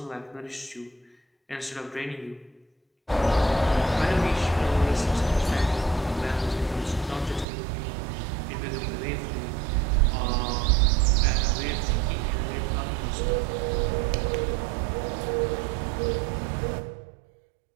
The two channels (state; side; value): drops out; left; at 7.5 s